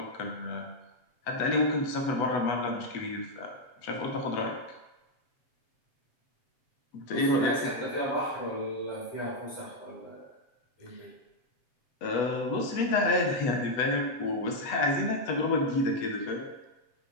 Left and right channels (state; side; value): late; right; 8.1 ms